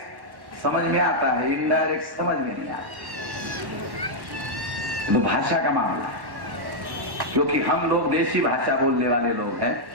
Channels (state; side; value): late; left; 1.1 ms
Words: समझ में आता है, इनडायरेक्ट समझ में नहीं आता। तो भाषा का मामला है, क्योंकि हम लोग देसी भाषा बोलने वाले लोग हैं।